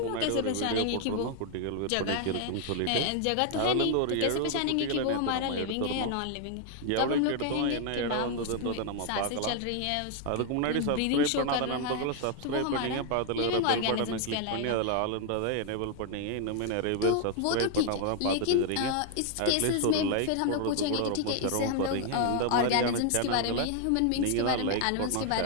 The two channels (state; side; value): different; both; correlation 0.00